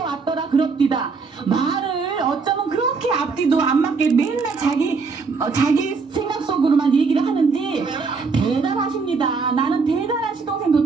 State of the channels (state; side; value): quieter; left; 4.7 dB